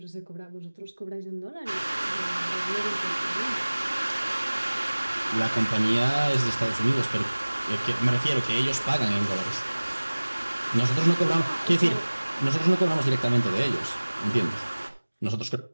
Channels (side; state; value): both; inverted; correlation -1.00